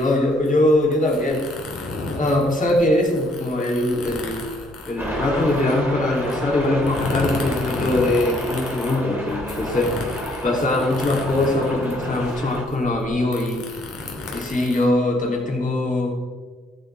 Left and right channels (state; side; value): normal; both; correlation 0.67